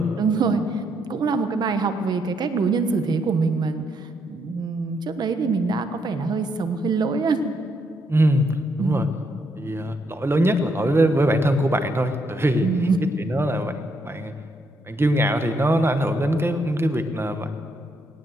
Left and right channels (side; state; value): both; normal; correlation 0.76